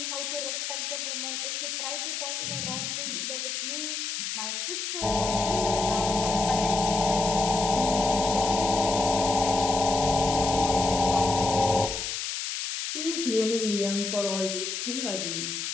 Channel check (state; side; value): noise; left; hiss, 3 dB below the sound